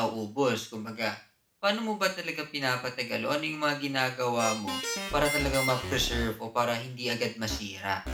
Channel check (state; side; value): identical; both; correlation 1.00